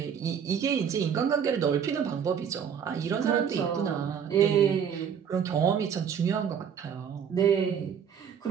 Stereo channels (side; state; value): left; quieter; 7.7 dB